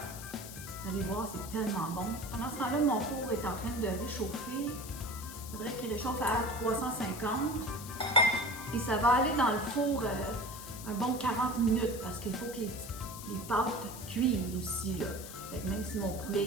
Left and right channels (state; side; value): noise; left; hiss, 12 dB below the sound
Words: allez voir, c'est tellement bon. Pendant ce temps-là, mon four est en train de réchauffer. Il faudrait qu'il réchauffe à 350. Et ça va aller dans le four un bon 40 minutes parce qu'il faut que les pâtes cuisent aussi, là. Fait que même si mon poulet